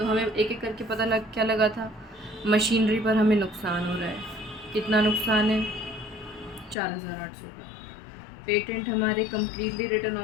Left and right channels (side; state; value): right; drops out; at 6.8 s